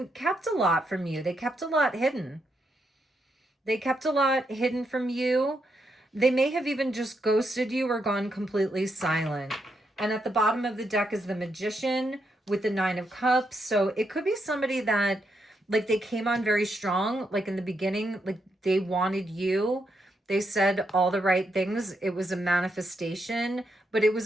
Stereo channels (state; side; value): normal; both; correlation 0.80